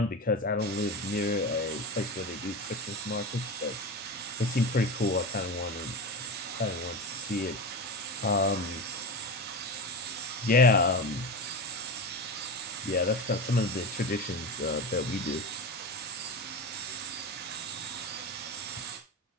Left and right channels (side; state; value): both; normal; correlation 0.23